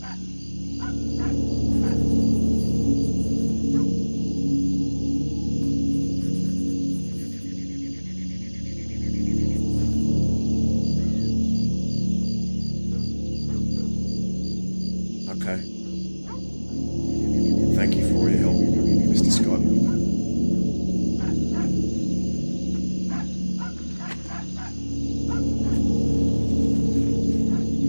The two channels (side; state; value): both; inverted; correlation -1.00